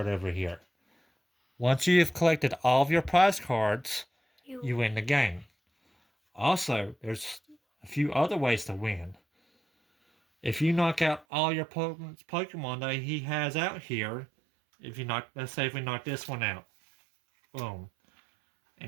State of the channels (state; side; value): drops out; left; at 11.2 s